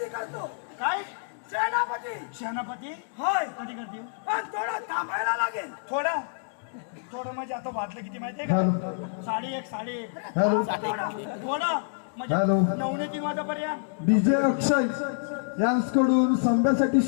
करतो. काय सेनापती? सेनापती होय. कधी करते? पण थोडं थांबायला लागेल. थोडं म्हणजे आता वाटलं किती माहितीये का? 1:30 थोडं म्हणजे 9:03 वाजेपर्यंत. डीजे अक्षय यांकडून संभ्यासाठी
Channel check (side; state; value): right; silent; digital silence